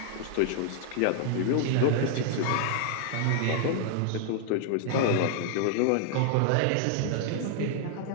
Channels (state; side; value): different; both; correlation 0.00